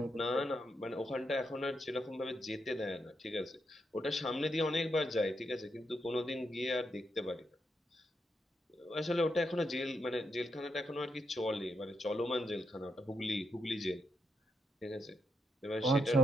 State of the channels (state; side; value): normal; both; correlation 0.81